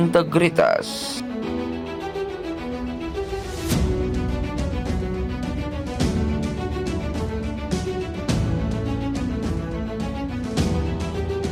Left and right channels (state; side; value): identical; both; correlation 1.00